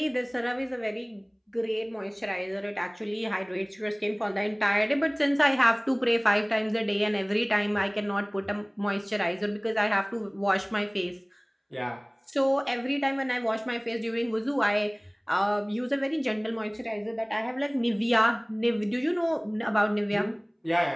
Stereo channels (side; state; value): both; identical; correlation 1.00